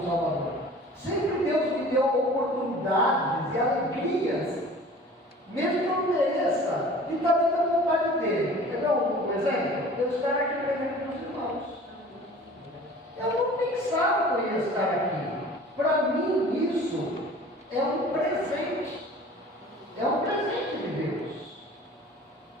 Salvador. Sempre Deus me deu oportunidades e alegrias, mesmo que eu não mereça, de estar dentro da vontade dele. Quer ver um exemplo? Eu estar aqui pregando para os irmãos. Eu não pensava que eu ia estar aqui. Para mim, isso é um presente. É um presente de Deus.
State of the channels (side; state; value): both; normal; correlation 0.44